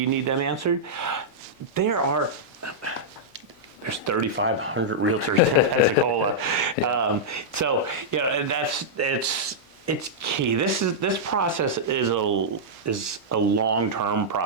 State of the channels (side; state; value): right; late; 1.6 ms